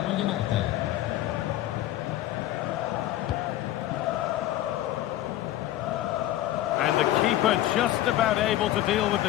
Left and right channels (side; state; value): right; quieter; 14.1 dB